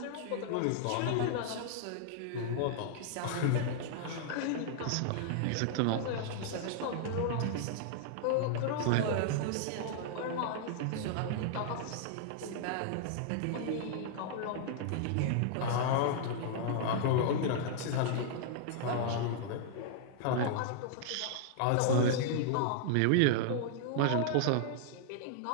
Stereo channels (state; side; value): different; both; correlation -0.01